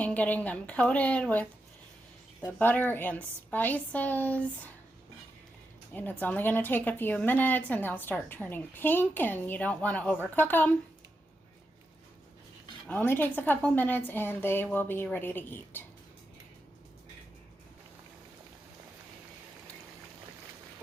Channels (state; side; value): normal; both; correlation 0.86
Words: getting them coated with the butter and spices. And it's only gonna take a few minutes and they'll start turning pink, and you don't wanna overcook them. Only takes a couple minutes and they will be ready to eat.